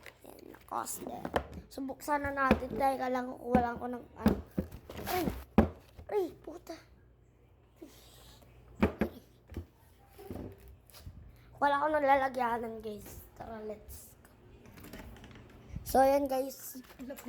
Ayan, Lacoste. So buksan na natin. Dahil lang kukuha ko ng ano. Ay, puta. Wala ko nalalagyanan, guys. Tara, let's go. So, ayan, guys.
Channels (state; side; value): identical; both; correlation 1.00